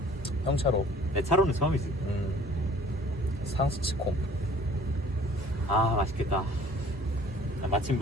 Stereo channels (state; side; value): normal; both; correlation 0.52